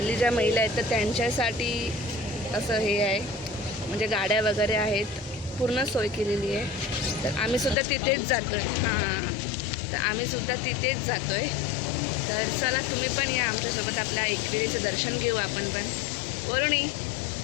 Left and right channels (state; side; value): drops out; right; at 7.8 s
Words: ज्या महिला आहेत तर त्यांच्यासाठी असं हे आहे, म्हणजे गाड्या वगैरे आहेत, पूर्ण सोय केलेली आहे. तर आम्हीसुद्धा तिथेच जातो आहे. तर आम्हीसुद्धा तिथेच जातो आहे. तर चला तुम्ही पण या आमच्यासोबत, आपल्या एकविरेचं दर्शन घेऊ आपण पण. वरुणी